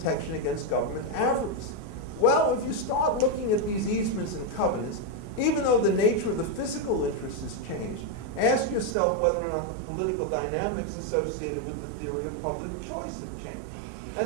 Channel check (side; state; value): left; drops out; at 9.0 s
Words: against government avarice. Well, if you start looking at these easements and covenants, even though the nature of the physical interest has changed, ask yourself whether or not the political dynamics associated with the theory of public choice have changed. And